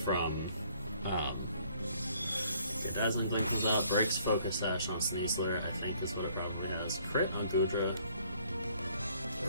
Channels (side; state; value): both; inverted; correlation -0.61